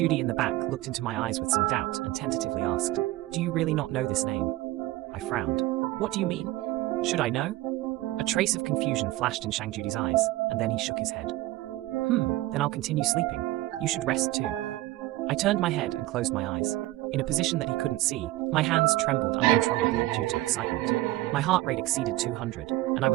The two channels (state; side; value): quieter; left; 17.1 dB